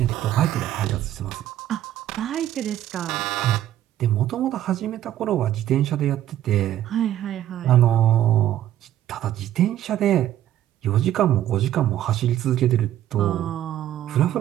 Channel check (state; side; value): quieter; left; 12.2 dB